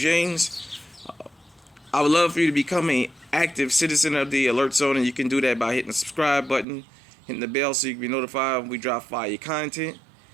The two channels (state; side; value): drops out; left; at 6.7 s